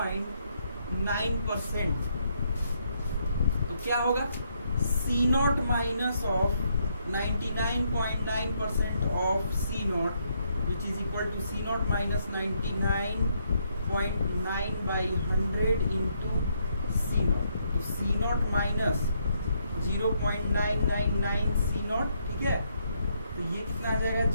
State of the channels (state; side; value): inverted; both; correlation -0.75